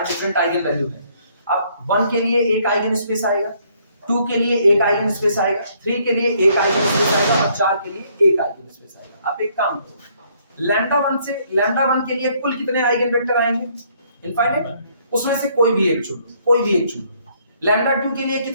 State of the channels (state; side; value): inverted; both; correlation -0.66